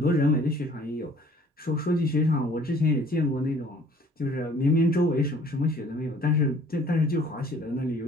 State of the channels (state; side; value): normal; both; correlation 0.54